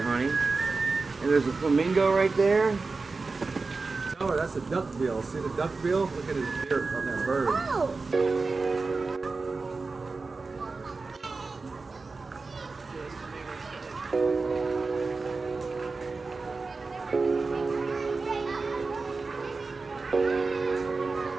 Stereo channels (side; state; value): left; quieter; 4.0 dB